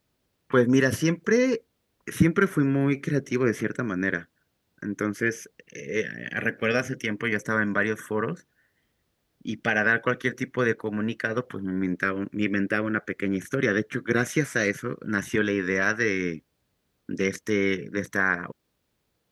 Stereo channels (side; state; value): both; identical; correlation 1.00